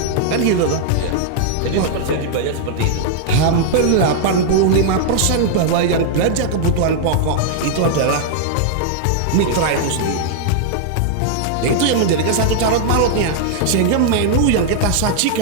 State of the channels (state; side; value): different; both; correlation -0.01